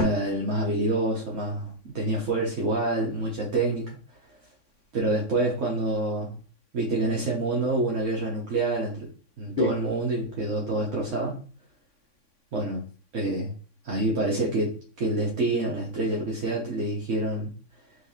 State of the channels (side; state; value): left; late; 3.6 ms